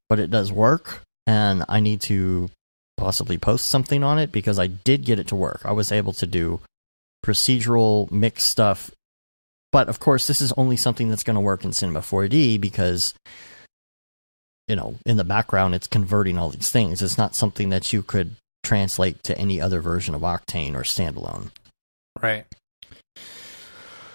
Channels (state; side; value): inverted; both; correlation -1.00